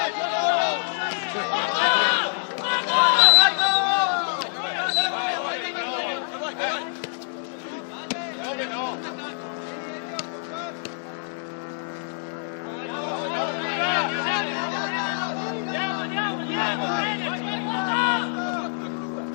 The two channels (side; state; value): right; silent; digital silence